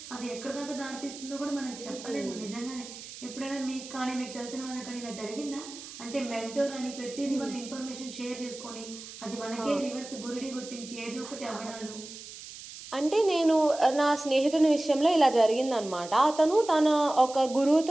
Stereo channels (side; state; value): right; noise; hiss, 14 dB below the sound